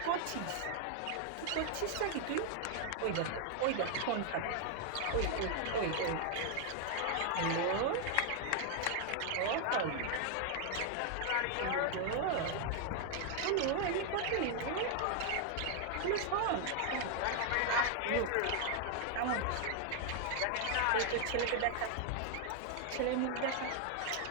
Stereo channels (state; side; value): different; both; correlation 0.00